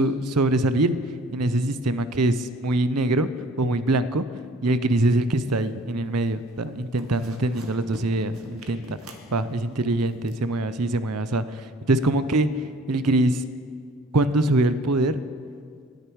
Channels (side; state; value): both; normal; correlation 0.53